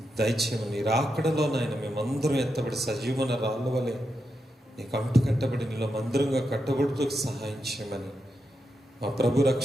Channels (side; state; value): both; normal; correlation 0.86